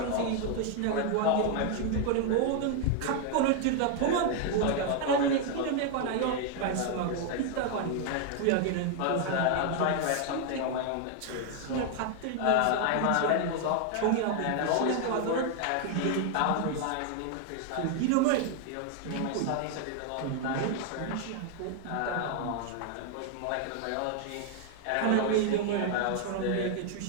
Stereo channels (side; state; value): both; different; correlation 0.00